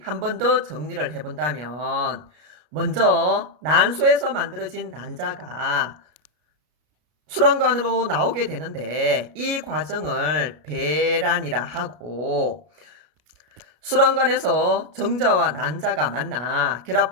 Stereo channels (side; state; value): left; late; 33 ms